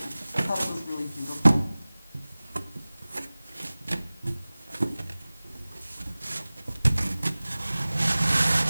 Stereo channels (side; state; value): both; inverted; correlation -0.99